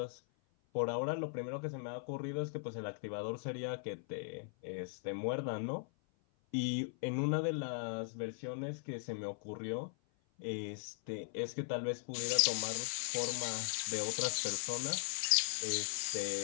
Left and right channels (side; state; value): right; silent; 52 dB below the other